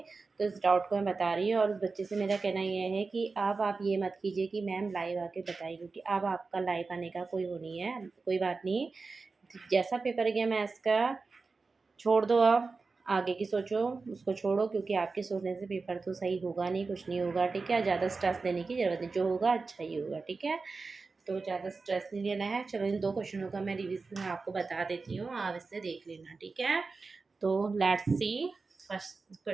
तो इस डाउट को मैं बता रही हूँ और उस बच्चे से मेरा कहना ये है कि अब आप ये मत कीजिए कि मैम लाइव आके बताइए, क्योंकि अब आपका लाइव आने का कोई वो नहीं है। कोई बात नहीं, जैसा पेपर गया मैथ्स का छोड़ दो, आप आगे की सोचो, उसको छोड़ो, क्योंकि आपके सोचने से पेपर तो सही होगा नहीं, कुछ नहीं होगा। ठीक है, ज़्यादा स्ट्रेस लेने की ज़रूरत नहीं, जो होगा अच्छा ही होगा। ठीक है, तो ज़्यादा स्ट्रेस नहीं लेना है। चलो, इन 2 क्वेश्चनों का मैं रिवीजन आपको बता देती हूँ, आप इससे देख लेना। ठीक है, तो लेट्स सी फर्स्ट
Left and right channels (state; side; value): quieter; left; 4.2 dB